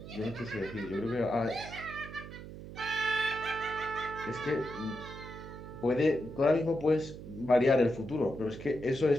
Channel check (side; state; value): right; noise; hum, 12 dB below the sound